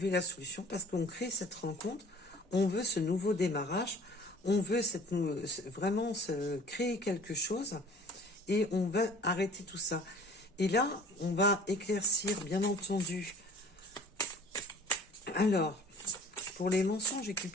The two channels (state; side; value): normal; both; correlation 0.49